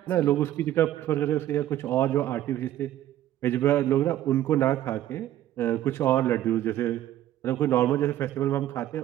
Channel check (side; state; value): left; quieter; 13.0 dB